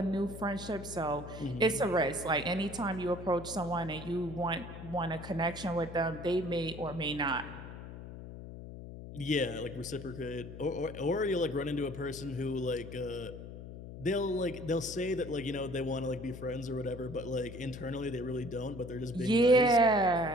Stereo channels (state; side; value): noise; left; hum, 11 dB below the sound